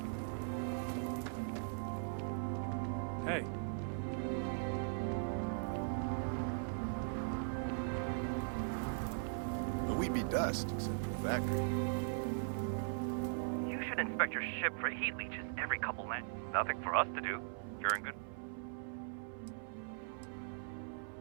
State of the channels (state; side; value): silent; left; 51 dB below the other